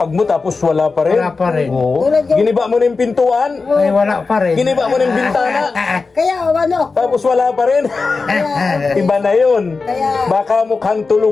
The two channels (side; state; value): right; quieter; 4.2 dB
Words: mo tapos wala pa rin. Wala pa rin. Oo. Tulad yung- Giniba mo na yung pintuan. Ay wala pa rin. Giniba mo na yung bintana. kaya Tapos wala pa rin. Iba na yun. Kaya- Baka mukhang